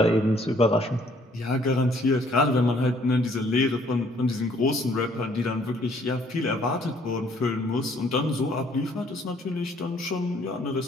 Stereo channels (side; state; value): both; normal; correlation 0.62